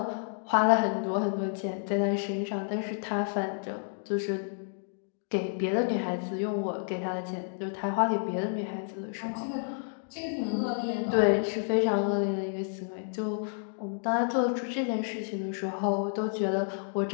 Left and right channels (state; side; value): silent; right; digital silence